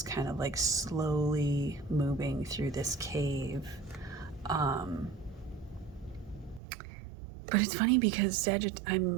kind of like slowly moving through this cave. But it's funny because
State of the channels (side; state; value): left; drops out; at 6.6 s